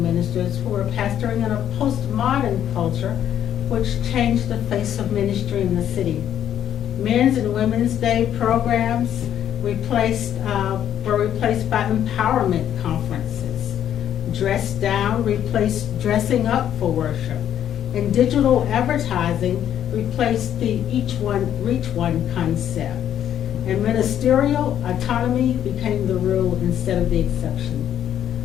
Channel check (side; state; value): right; quieter; 10.3 dB